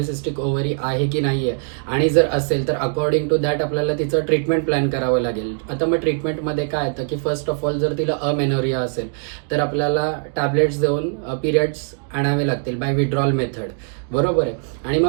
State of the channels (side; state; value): left; silent; 56 dB below the other